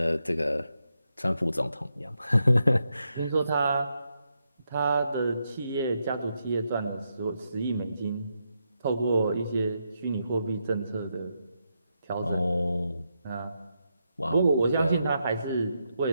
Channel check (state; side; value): inverted; both; correlation -0.83